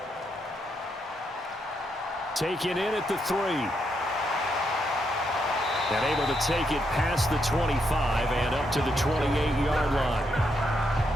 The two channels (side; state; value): both; normal; correlation 0.79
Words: Taken in at the 3. And able to take it past the 25 and up to the 28-yard line.